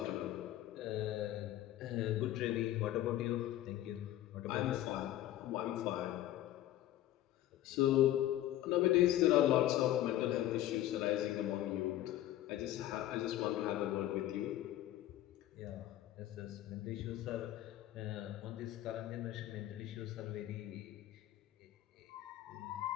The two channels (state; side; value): quieter; right; 13.7 dB